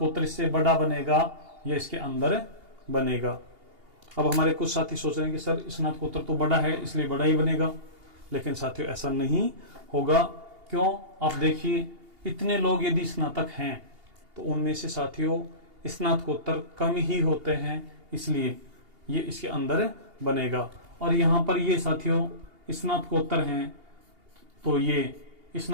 इससे बड़ा बनेगा या इसके अंदर बनेगा। अब हमारे कुछ साथी सोच रहे हैं कि सर स्नातकोत्तर तो बड़ा है इसलिए बड़ा ही बनेगा, लेकिन साथियों ऐसा नहीं होगा। क्यों, आप देखिए इतने लोग यदि स्नातक हैं तो उनमें से साथियों स्नातकोत्तर कम ही होते हैं, इसलिए ये इसके अंदर बनेगा। और यहाँ पर ये साथियों स्नातकोत्तर हैं तो ये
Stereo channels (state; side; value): late; left; 2.8 ms